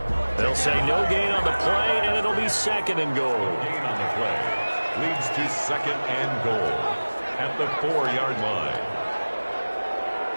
They'll say no gain on the play, and it'll be 2nd and goal. Gain on the play leads to 2nd and goal at the 4-yard line.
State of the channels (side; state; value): both; inverted; correlation -1.00